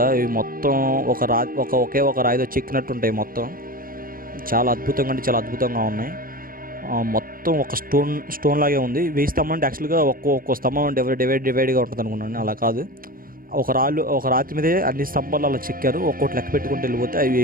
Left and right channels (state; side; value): late; left; 0.41 ms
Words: ఇవి మొత్తం ఒకే ఒక రాయితో చెక్కినట్టు ఉంటాయి. మొత్తం చాలా అద్భుతంగా అంటే చాలా అద్భుతంగా ఉన్నాయి. మొత్తం ఒక స్టోన్ లాగే ఉంది. వేయి స్తంభం అంటే యాక్చువల్గా ఒక్కో స్తంభం డివైడ్గా ఉంటుంది అనుకున్నాను. అలా కాదు, ఒక రాతి మీదే అన్ని స్తంభాలు అలా చెక్కారు. ఒక్కోటి లెక్క పెట్టుకుంటూ వెళ్ళిపోతే అవి